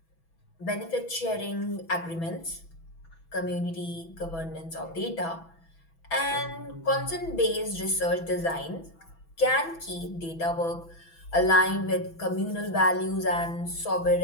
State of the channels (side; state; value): right; late; 6.1 ms